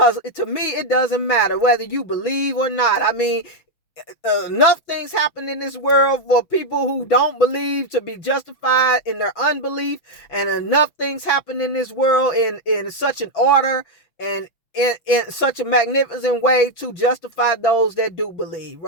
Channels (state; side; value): late; right; 6.1 ms